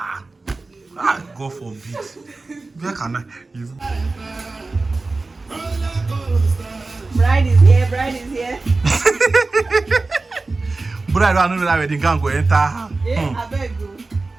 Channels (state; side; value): quieter; left; 3.5 dB